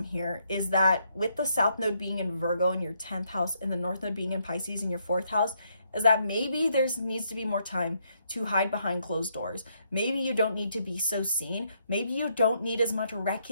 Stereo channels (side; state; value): both; inverted; correlation -0.74